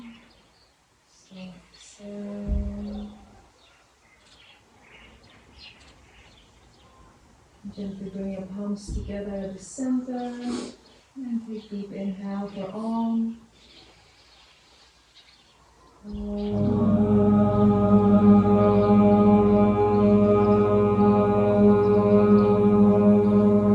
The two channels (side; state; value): both; identical; correlation 1.00